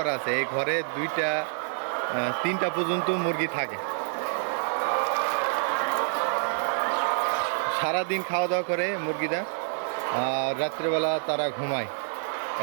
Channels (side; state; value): left; silent; digital silence